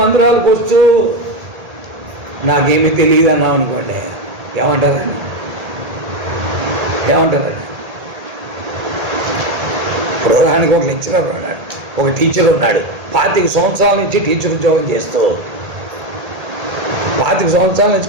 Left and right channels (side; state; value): left; late; 1.8 ms